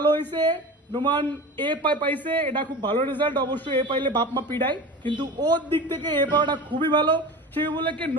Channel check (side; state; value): both; normal; correlation 0.33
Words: হয়েছে, নোমান এ পাইছে, এটা খুব ভালো রেজাল্ট। অবশ্যই এ পাইলে বাপ মা পিড়ায়, কিন্তু ওর দিক থেকে এ পাওয়াটা খুবই ভালো। সেই বলে কি